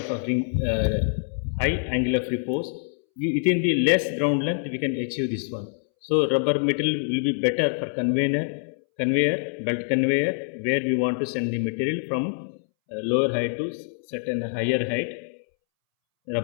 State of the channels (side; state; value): right; silent; 62 dB below the other